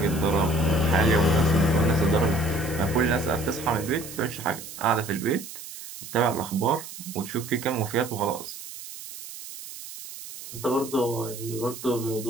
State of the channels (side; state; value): right; noise; hiss, 13 dB below the sound